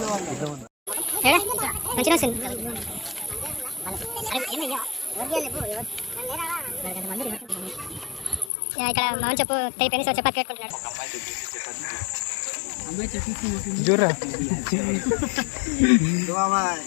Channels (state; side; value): drops out; right; at 8.5 s